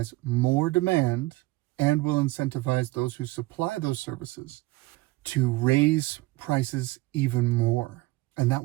more demand and will incentivize those who supply those services to raise prices even more. And that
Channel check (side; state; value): left; quieter; 20.1 dB